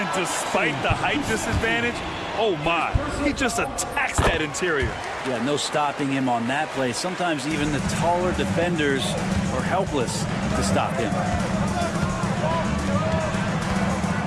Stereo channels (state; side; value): identical; both; correlation 1.00